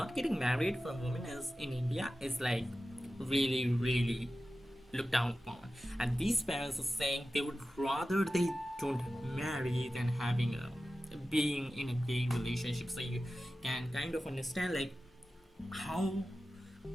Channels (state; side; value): normal; both; correlation 0.94